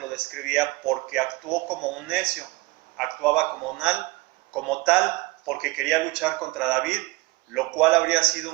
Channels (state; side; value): quieter; left; 22.3 dB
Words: describía porque actuó como un necio. Actuaba como tal porque quería luchar contra David, lo cual habría sido